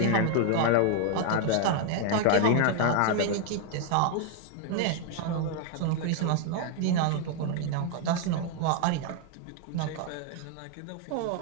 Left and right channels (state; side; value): different; both; correlation 0.00